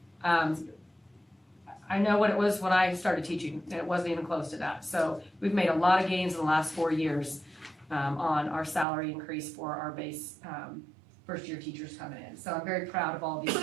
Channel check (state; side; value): drops out; left; at 8.8 s